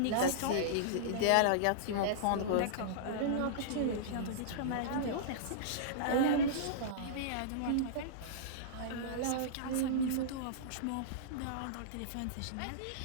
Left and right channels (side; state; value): both; different; correlation -0.03